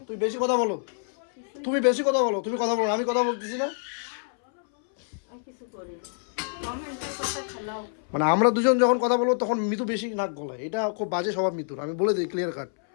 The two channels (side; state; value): right; silent; 60 dB below the other